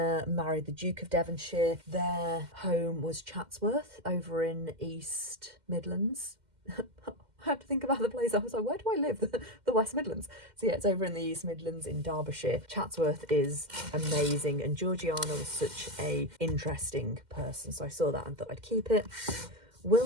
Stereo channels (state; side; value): late; left; 2.1 ms